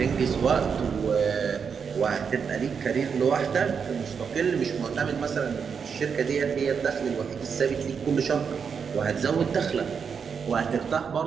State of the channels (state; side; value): quieter; left; 6.4 dB